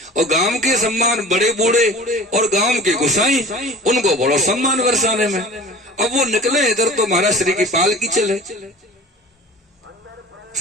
और गांव के सम्मान बड़े बूढ़े और गांव के गोसाई, उनको बड़ा सम्मान वर्षाने में। अब वो निकले इधर तो महाराज श्री की पालकी चले,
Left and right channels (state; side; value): normal; both; correlation 0.41